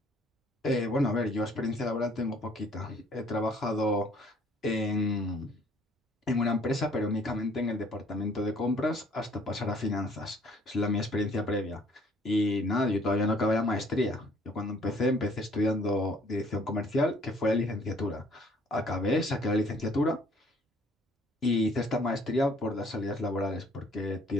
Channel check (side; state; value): both; normal; correlation 0.59